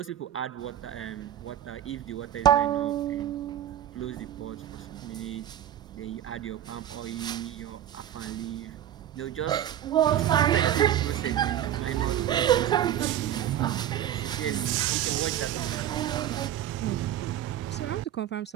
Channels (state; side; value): quieter; left; 11.1 dB